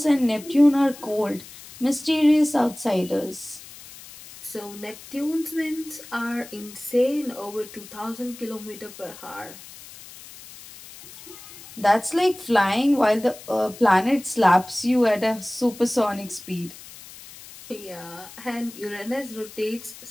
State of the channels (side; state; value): left; noise; hiss, 17 dB below the sound